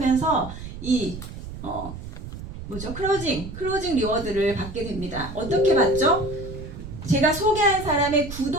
이 클로징 리워드를 받게 됩니다. 어떻게 받죠? 제가 소개한 사람의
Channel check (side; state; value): right; noise; rumble, 10 dB below the sound